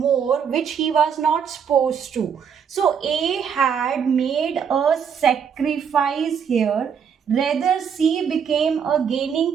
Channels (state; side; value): quieter; left; 7.3 dB